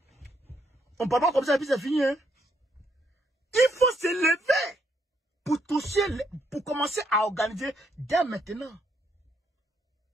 On ne parle pas comme ça, et puis c'est fini, hein. Il faut se lever pour toucher, pour commencer à organiser dès maintenant.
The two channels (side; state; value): both; normal; correlation 0.74